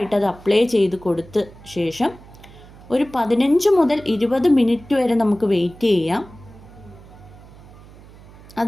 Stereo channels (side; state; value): right; noise; hum, 21 dB below the sound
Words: അത് അപ്ലൈ ചെയ്ത് കൊടുത്ത ശേഷം ഒരു 15 മുതൽ 20 മിനിറ്റ് വരെ നമുക്ക് വെയിറ്റ് ചെയ്യാം.